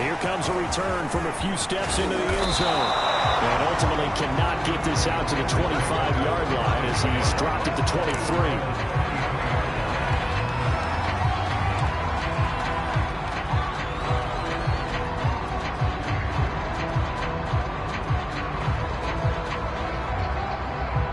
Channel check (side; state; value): both; identical; correlation 1.00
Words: here comes a return from a few steps into the end zone. And ultimately cannot get this out to the 25-yard line as he's dropped it to 23.